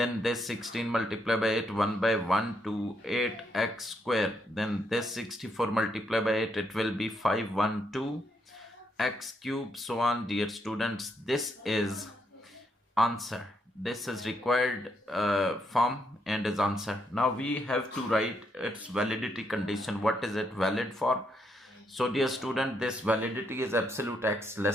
this 16 multiplied by 8, 1 by 1 to 8x square. Then this 64 multiplied by 8, it will be 512 x cube, so on. Dear students, this is answer. This is required form and is answer. Now we have to write its validity condition. What is it valid for? So, dear student, this validity is absolute x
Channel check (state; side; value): normal; both; correlation 0.77